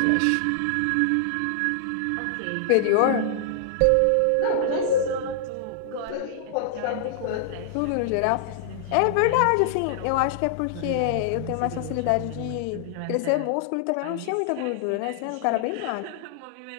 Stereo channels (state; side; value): different; both; correlation -0.01